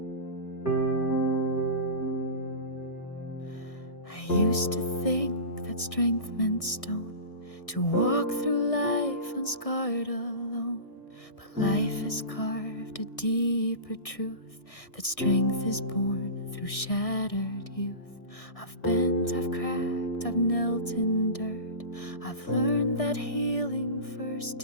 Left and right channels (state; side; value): late; right; 1.6 ms